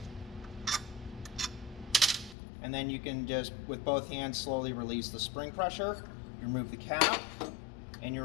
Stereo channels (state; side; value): drops out; right; at 2.4 s